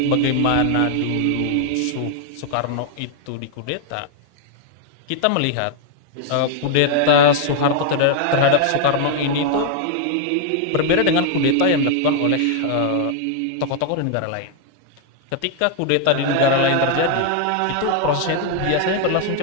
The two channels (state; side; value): different; both; correlation 0.00